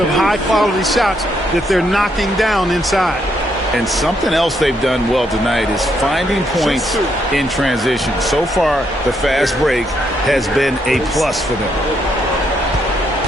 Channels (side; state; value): both; normal; correlation 0.75